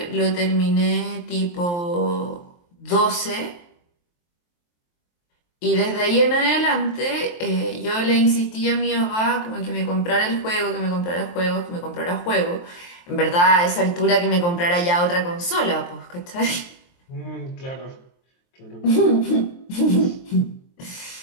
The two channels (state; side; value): late; right; 23 ms